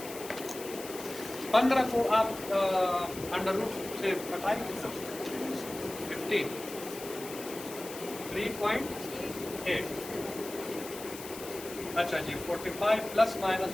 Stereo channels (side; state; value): left; noise; hiss, 12 dB below the sound